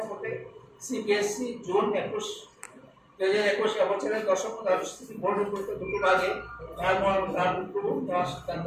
সিবিএসসি জুন 2021 বছরের দশম দ্বাদশ শ্রেণী বোর্ড পরীক্ষা দুটো ভাগে নেওয়ার সিদ্ধান্ত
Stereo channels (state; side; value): identical; both; correlation 1.00